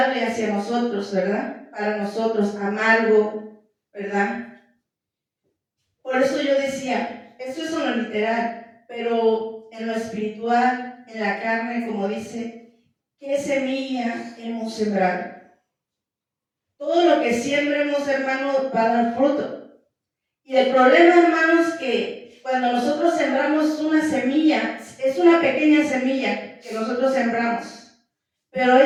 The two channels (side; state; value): both; identical; correlation 1.00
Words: hacia nosotros, ¿verdad? Para nosotros, amargo, ¿verdad? Por eso yo decía, esto es en lo literal, pero en lo espiritual, en la carne, como dice, ¿qué semilla hemos sembrado? Todo lo que siembremos, hermanos, va a dar fruto. Y el problema, hermanos, que cuando nosotros sembramos una semilla, es una pequeña semilla que nosotros sembramos, pero